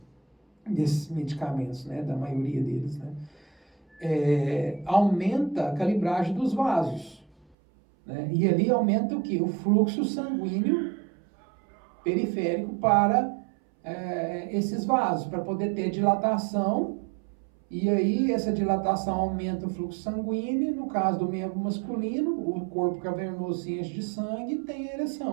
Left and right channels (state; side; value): drops out; left; at 7.5 s